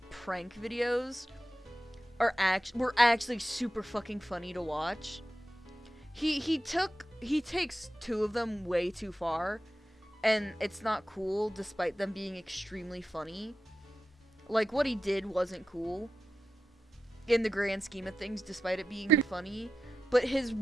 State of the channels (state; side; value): normal; both; correlation 0.92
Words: prank videos were actually super fucking funny to watch. He takes 2 of them way too far, and it's not cool despite them being extremely funny. Like, what he did wasn't cool in the grand scheme of things, despite it being funny. But his